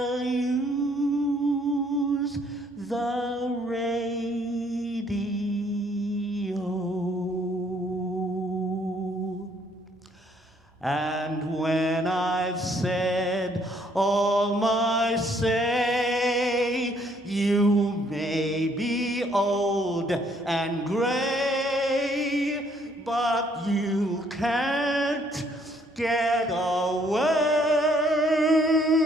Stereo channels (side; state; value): both; normal; correlation 0.66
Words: use the radio. And when I've said all my say, you may be old and gray, but you can't get away